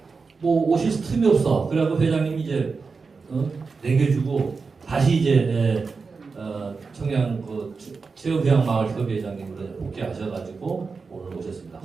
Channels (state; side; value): quieter; left; 4.7 dB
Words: 뭐 오실 틈이 없어. 그래갖고 회장님이 이제 내겨주고 다시 이제 청양 그 체험휴양마을협의회장님으로 복귀하셔가지고 오늘 오셨습니다.